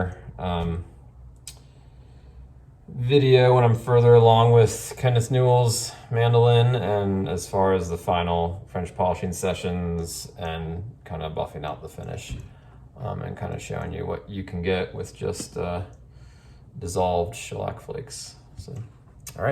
video when I'm further along with Kenneth Newell's mandolin, and as far as the final French polishing sessions and kind of buffing out the finish, and kind of showing you what you can get with just dissolved shellac flakes. So, all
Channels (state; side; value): identical; both; correlation 1.00